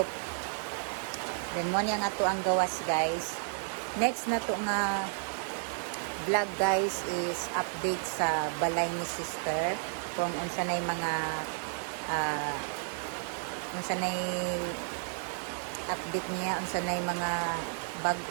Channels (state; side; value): silent; left; digital silence